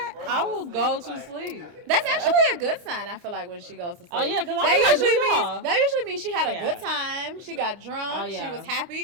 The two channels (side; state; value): left; late; 29 ms